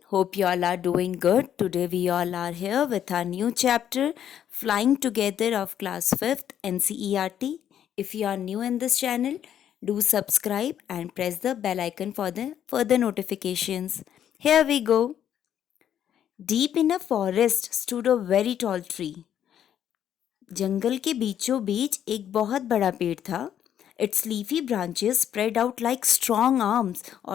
hope you all are doing good. Today we all are here with our new chapter Flying Together of class 5th NCERT. If you are new in this channel, do subscribe and press the bell icon for the further notifications. Here we go. Deep in a forest stood a very tall tree. जंगल के बीचों बीच एक बहुत बड़ा पेड़ था. It's leafy branches spread out like strong arms,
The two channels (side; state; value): right; quieter; 9.9 dB